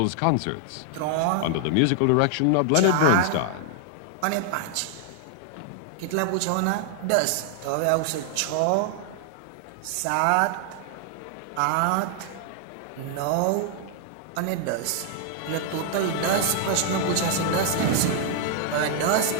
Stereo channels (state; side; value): different; both; correlation 0.00